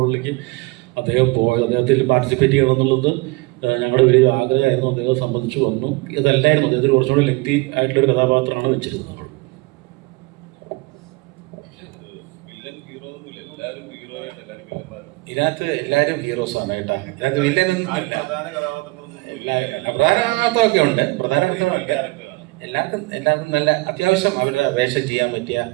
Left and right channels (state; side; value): quieter; left; 24.4 dB